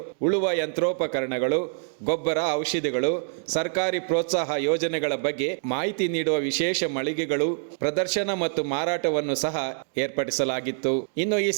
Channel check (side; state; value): left; silent; 61 dB below the other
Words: ಉಳುವ ಯಂತ್ರೋಪಕರಣಗಳು, ಗೊಬ್ಬರ, ಔಷಧಿಗಳು, ಸರ್ಕಾರಿ ಪ್ರೋತ್ಸಾಹ ಯೋಜನೆಗಳ ಬಗ್ಗೆ ಮಾಹಿತಿ ನೀಡುವ ವಿಶೇಷ ಮಳಿಗೆಗಳು, ಪ್ರದರ್ಶನ ಮತ್ತು ಮಾರಾಟವನ್ನು ಸಹ ಏರ್ಪಡಿಸಲಾಗಿತ್ತು. ಇನ್ನು ಈ